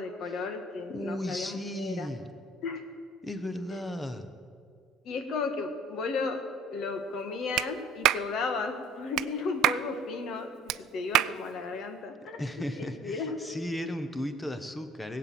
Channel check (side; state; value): both; normal; correlation 0.51